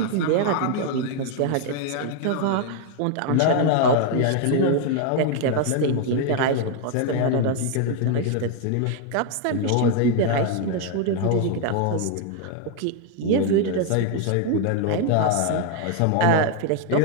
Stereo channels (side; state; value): both; different; correlation 0.00